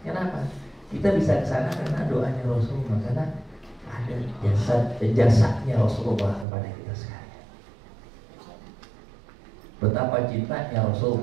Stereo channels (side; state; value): left; drops out; at 6.5 s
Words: Kenapa? Kita bisa ke sana karena doanya Rasulullah, karena ada jasanya Rasulullah kepada kita sekalian. Betapa cintanya